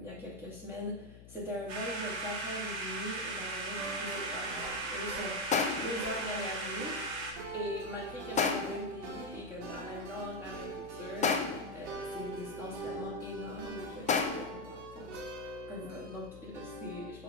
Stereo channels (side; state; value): left; noise; hum, 16 dB below the sound